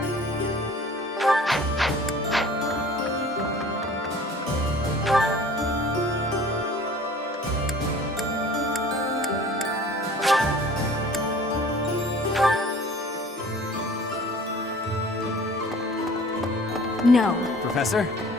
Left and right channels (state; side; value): normal; both; correlation 0.47